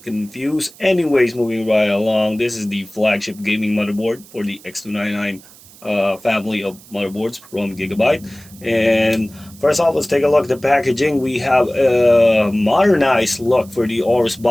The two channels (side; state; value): right; noise; hiss, 23 dB below the sound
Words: confused. Anyways, moving right along, this is the flagship gaming motherboard for the X299 family of motherboards from GIGABYTE. And first off, let's take a look at the packaging. We have a modernized look for the AORUS